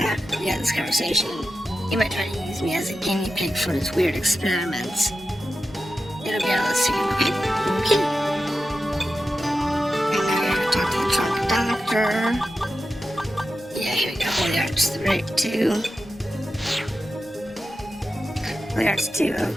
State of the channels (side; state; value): both; normal; correlation 0.92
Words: We had this conversation. He might try to use me as a guinea pig for his weird experiments. It'll be all soon, okay? Okay. And now we're gonna talk to the trunk doctor. Yeah, here we go. Holy Arts 2. Holy Arts 2,